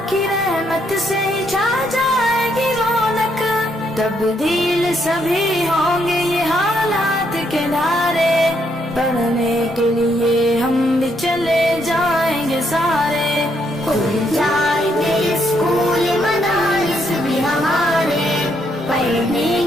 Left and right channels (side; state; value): both; normal; correlation 0.74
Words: کی رحمت سے چھا جائے گی رونق، تبدیل سبھی ہوں گے یہ حالات کے دھارے، پڑھنے کے لیے ہم بھی چلے جائیں گے سارے، کھل جائیں گے اسکول مدارس بھی ہمارے، پڑھنے